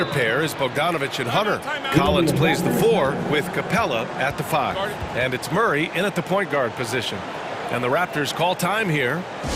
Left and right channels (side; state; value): both; identical; correlation 1.00